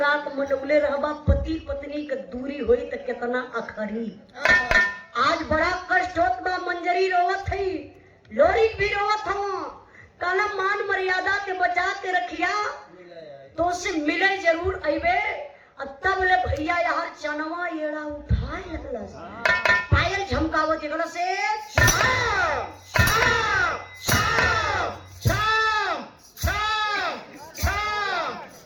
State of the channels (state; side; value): identical; both; correlation 1.00